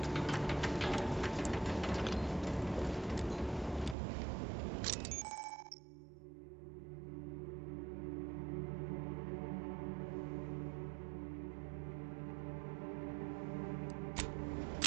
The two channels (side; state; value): left; drops out; at 4.0 s